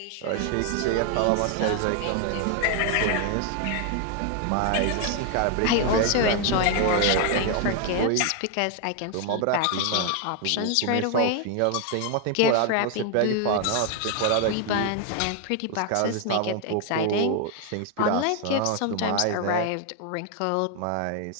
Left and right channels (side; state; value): both; different; correlation 0.00